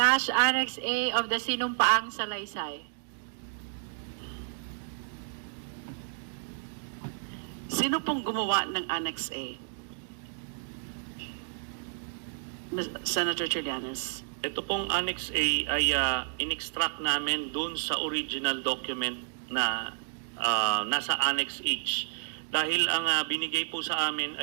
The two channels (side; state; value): left; silent; digital silence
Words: Annex A of the sinumpaang salaysay. Sino pong gumawa ng Annex A? Senator Trillanes. Ito pong Annex A ay in-extract namin dun sa original document na nasa Annex H. Dahil ang binigay po sa amin